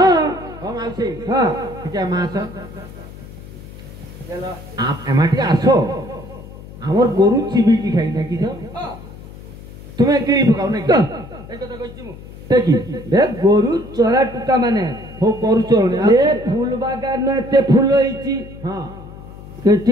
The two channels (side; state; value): left; noise; hum, 16 dB below the sound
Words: ও মাউসি হ্যাঁ ଟିକେ মা আস এমা ଟିକେ আস আমার গরু চিবিকি খাই নাকি তো তুমি কিনি পকাও নাকি এই কথা কইছি মু দেখি বে গরু চরা টুকা মানে হো গরু চলনি এ ফুল বাগান এতে ফুল হইছি হ্যাঁ